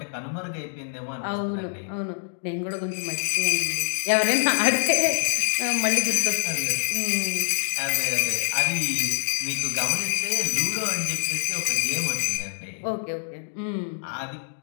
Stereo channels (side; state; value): right; silent; digital silence